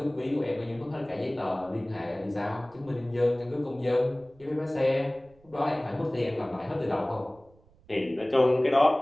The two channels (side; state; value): right; noise; rumble, 29 dB below the sound